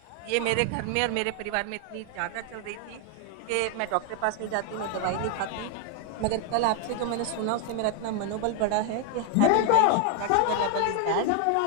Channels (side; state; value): both; different; correlation 0.00